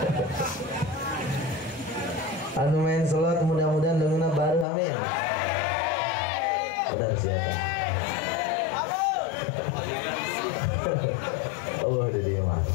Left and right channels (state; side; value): drops out; right; at 4.7 s